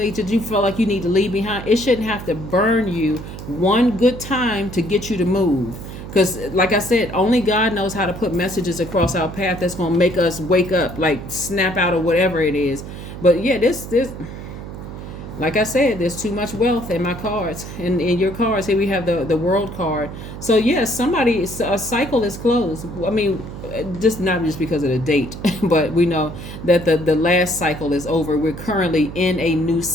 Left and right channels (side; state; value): right; noise; hum, 11 dB below the sound